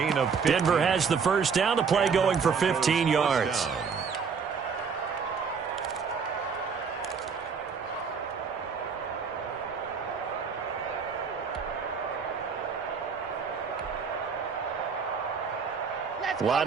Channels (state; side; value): quieter; left; 5.9 dB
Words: of 15. Denver has the first down. The play going for 15 yards.